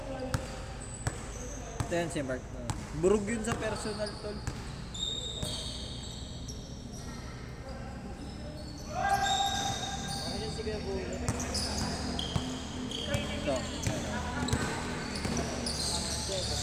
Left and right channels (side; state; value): both; identical; correlation 1.00